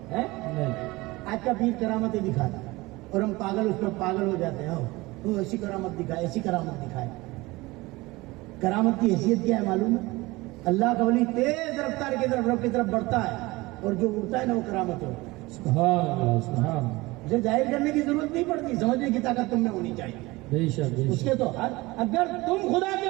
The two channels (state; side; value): quieter; left; 21.4 dB